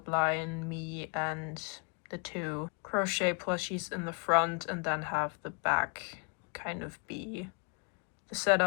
me and the 2 crochet plushies in the front and then have the back kind of be the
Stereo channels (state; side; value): quieter; right; 36.1 dB